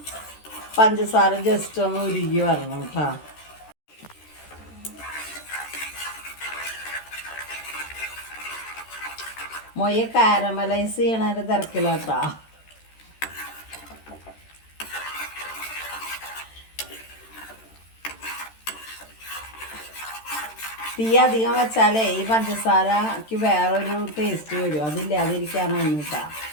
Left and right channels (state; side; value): late; right; 13 ms